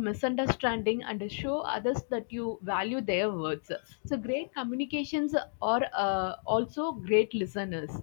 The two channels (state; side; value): silent; right; digital silence